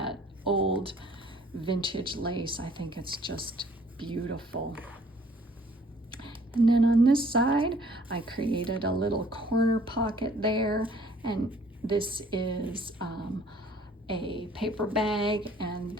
old vintage lace. I think it's just beautiful. And then on this side, I created a little corner pocket there, and this is a paper bag, and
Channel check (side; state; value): both; normal; correlation 0.57